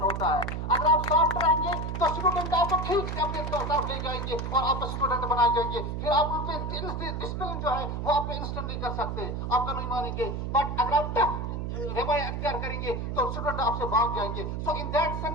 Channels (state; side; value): noise; right; hum, 3 dB below the sound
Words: ہوتا ہے. اگر آپ سافٹ رہیں گے تو اسٹوڈنٹ آپ کو ٹھیک سے اپنے طرف لے جائیں گے اور آپ کا اسٹوڈنٹ بنائے جائیں گے، پھر آپ ان پہ ڈسپلن جو ہے وہ آپ پہ انسٹنٹ نہیں کر سکتے، آپ کا نہیں مانیں گے، بٹ اگر آپ ٹف رویہ اختیار کریں گے تو اسٹوڈنٹ آپ سے بھاگ جائیں گے. So in that